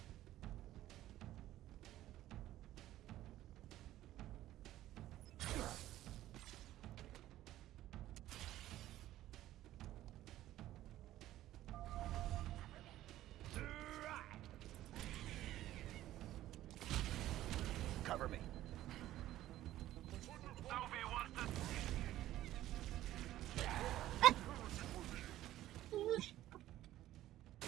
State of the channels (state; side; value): quieter; left; 14.1 dB